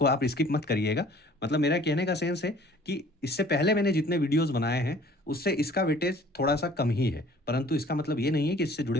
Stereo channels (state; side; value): normal; both; correlation 0.52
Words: आप स्किप मत करिएगा। मतलब मेरा कहने का सेंस है कि इससे पहले मैंने जितने वीडियोज़ बनाए हैं, उससे इसका वेटेज थोड़ा-सा कम ही है, परंतु इसका मतलब ये नहीं है कि इससे जुड़े